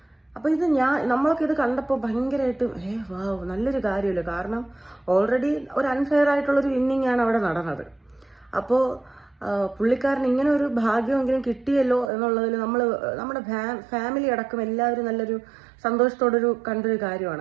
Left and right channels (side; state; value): left; drops out; at 12.1 s